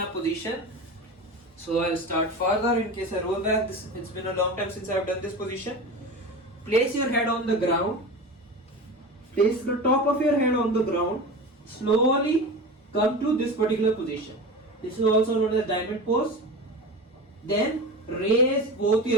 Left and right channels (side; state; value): both; normal; correlation 0.29